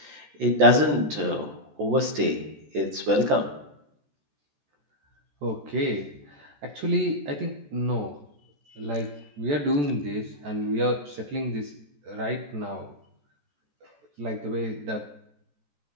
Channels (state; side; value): late; left; 14 ms